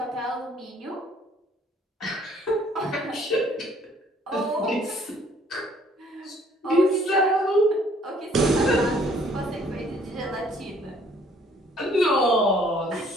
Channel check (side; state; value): both; normal; correlation 0.61